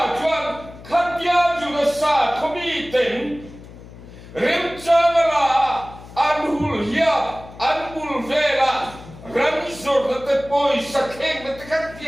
chuan khát bia chú nó sa không bị tỉnh rem chang la anhul hiya anbul vela ramzor na te poi sakeng na te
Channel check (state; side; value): noise; left; hum, 18 dB below the sound